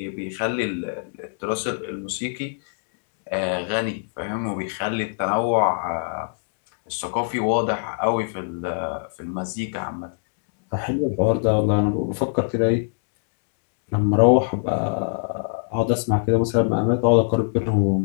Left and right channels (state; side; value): silent; right; digital silence